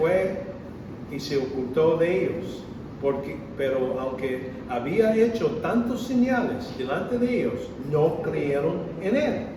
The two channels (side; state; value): both; identical; correlation 1.00